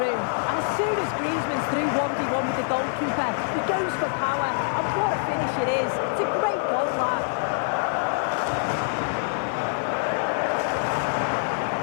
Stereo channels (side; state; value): right; silent; 59 dB below the other